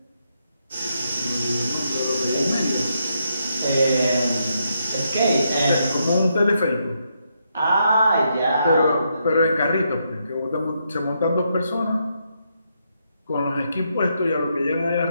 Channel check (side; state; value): both; inverted; correlation -0.79